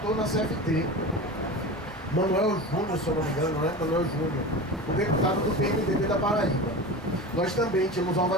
na CFT, Manuel Júnior, se eu não me engano, né? Manuel Júnior, o deputado do PMDB da Paraíba. Nós também tínhamos uma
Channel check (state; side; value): normal; both; correlation 0.29